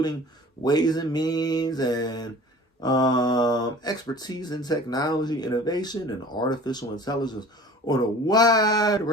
Ways and Means and expertise in technology, innovation, and artificial intelligence on a wide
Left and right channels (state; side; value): normal; both; correlation 0.44